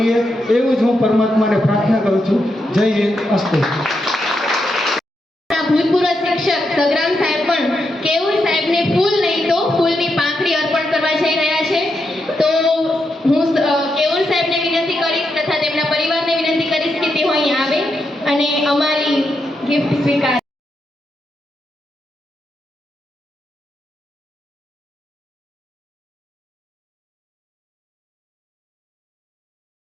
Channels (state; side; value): normal; both; correlation 0.83